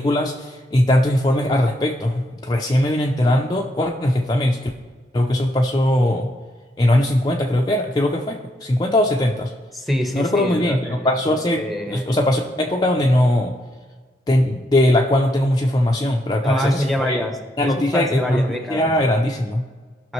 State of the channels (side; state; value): both; normal; correlation 0.76